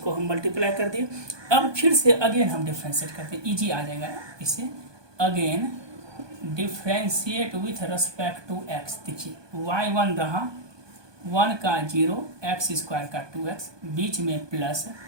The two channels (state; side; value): late; left; 1.2 ms